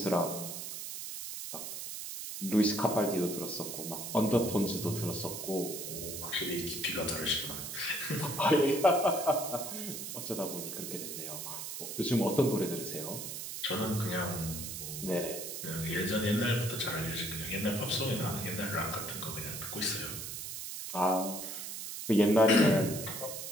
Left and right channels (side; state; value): right; noise; hiss, 7 dB below the sound